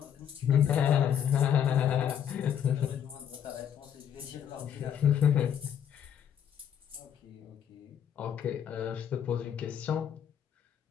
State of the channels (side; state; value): right; quieter; 9.0 dB